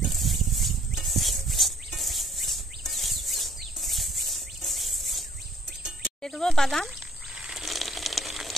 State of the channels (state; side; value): normal; both; correlation 0.62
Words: দিয়ে দেব বাদাম,